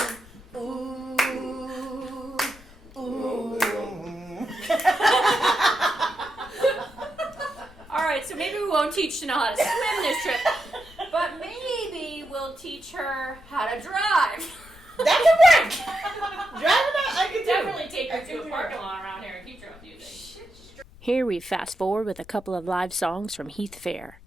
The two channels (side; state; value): left; noise; rumble, 22 dB below the sound